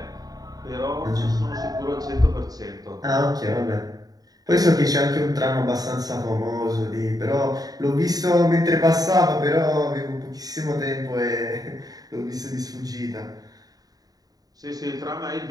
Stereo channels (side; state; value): left; late; 0.18 ms